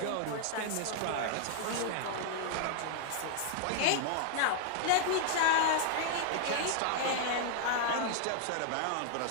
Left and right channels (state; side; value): different; both; correlation 0.00